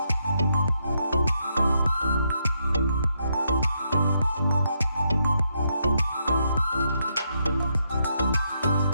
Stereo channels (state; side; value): inverted; both; correlation -0.79